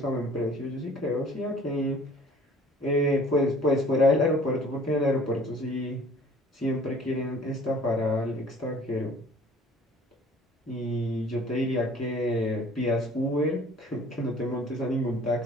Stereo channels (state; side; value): normal; both; correlation 0.51